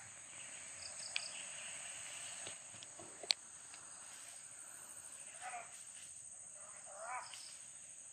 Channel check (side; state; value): both; identical; correlation 1.00